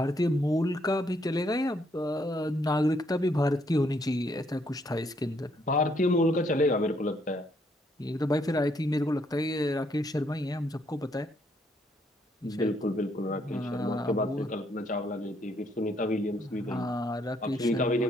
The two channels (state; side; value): normal; both; correlation 0.71